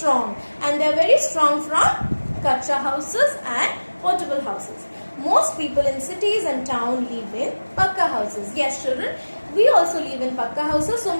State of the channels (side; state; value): both; inverted; correlation -1.00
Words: and they are very strong from kacha houses and portable houses. Most people in cities and towns live in pakka houses. Yes, children, we also live in pakka houses. So